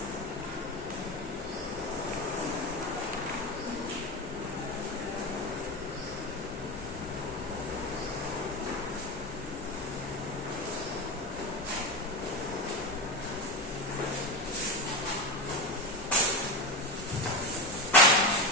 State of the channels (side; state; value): both; normal; correlation 0.18